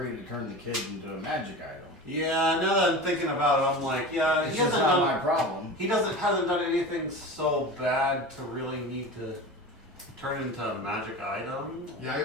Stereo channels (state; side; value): normal; both; correlation 0.31